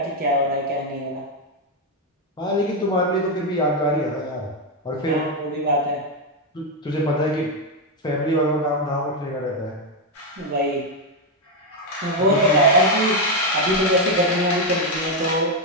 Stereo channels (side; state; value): both; normal; correlation 0.04